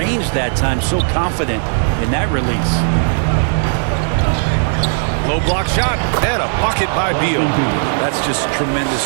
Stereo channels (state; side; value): silent; left; 61 dB below the other